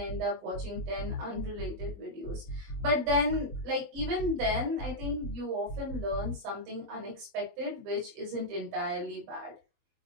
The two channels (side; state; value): left; late; 21 ms